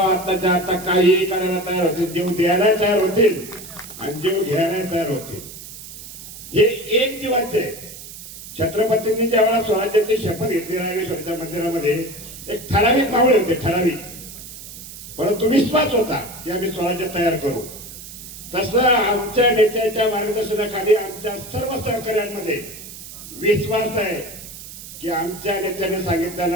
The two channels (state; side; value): noise; right; hiss, 14 dB below the sound